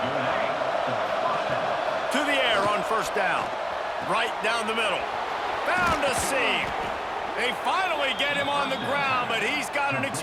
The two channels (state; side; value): identical; both; correlation 1.00